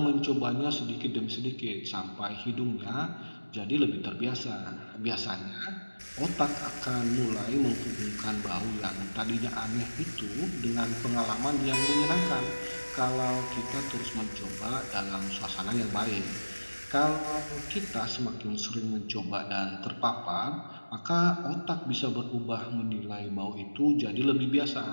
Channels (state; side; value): inverted; both; correlation -1.00